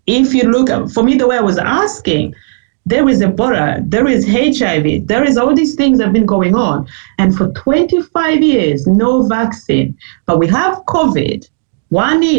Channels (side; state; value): left; silent; digital silence